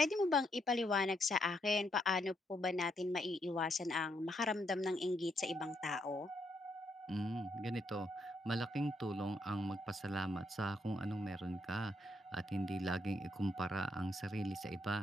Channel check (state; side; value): normal; both; correlation 0.76